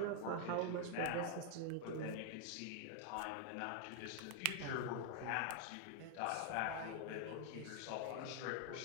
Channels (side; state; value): both; different; correlation 0.00